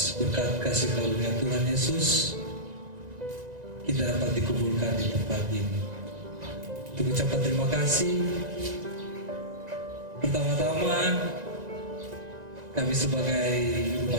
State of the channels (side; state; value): left; late; 1.9 ms